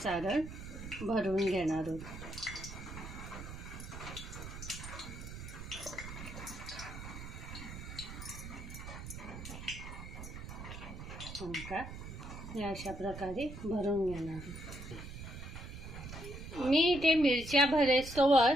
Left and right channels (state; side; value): noise; right; rumble, 10 dB below the sound